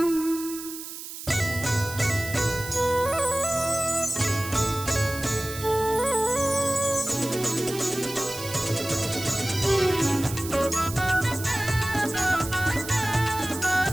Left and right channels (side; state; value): right; noise; hiss, 10 dB below the sound